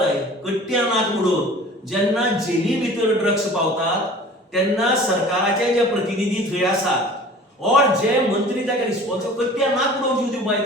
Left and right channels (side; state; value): both; normal; correlation 0.44